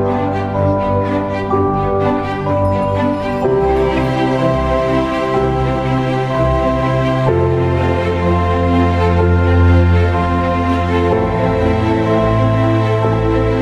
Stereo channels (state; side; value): identical; both; correlation 1.00